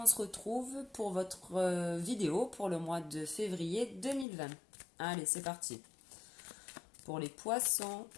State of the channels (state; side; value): drops out; right; at 4.2 s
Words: se retrouve pour votre vidéo pour le mois de février 2020. Allez, c'est parti. Pour les poissons,